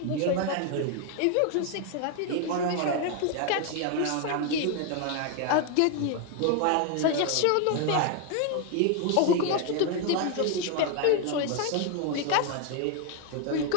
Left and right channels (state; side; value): different; both; correlation 0.01